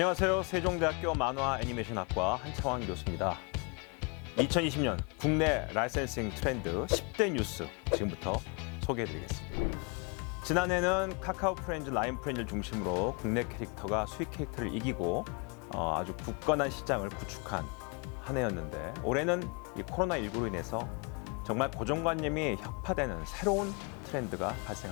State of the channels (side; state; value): right; quieter; 33.0 dB